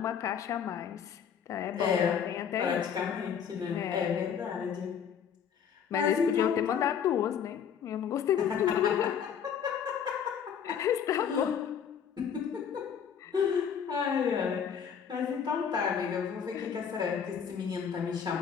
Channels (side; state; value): right; quieter; 7.8 dB